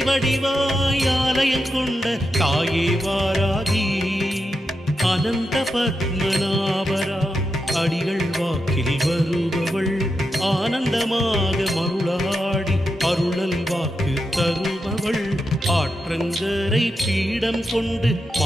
வடிவாய் ஆலயம் கொண்ட தாயே வாராகி அனந்த பத்மநாபரா அடிகள் வாக்கில் வருபவள் ஆனந்தமாக மருளாடி அருளல் வாக்கு தருபவள் ஆற்றங்கரை பீடம் கொண்டு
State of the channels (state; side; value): normal; both; correlation 0.87